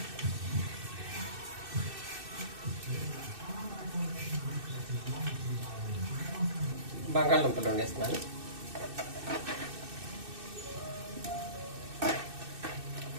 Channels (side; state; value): left; late; 2.6 ms